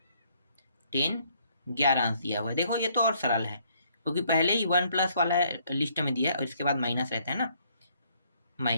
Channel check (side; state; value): both; inverted; correlation -0.66